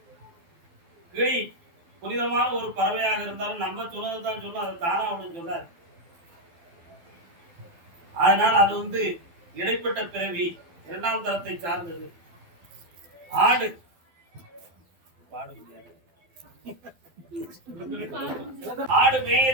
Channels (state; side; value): late; left; 12 ms